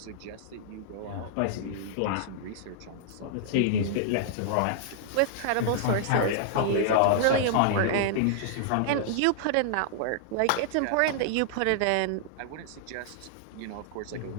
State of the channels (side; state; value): both; different; correlation -0.01